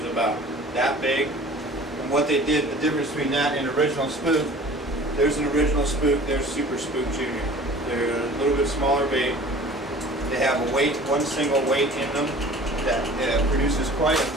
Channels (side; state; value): both; normal; correlation 0.45